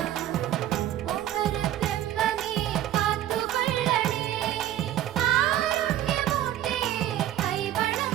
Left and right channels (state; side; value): quieter; left; 12.3 dB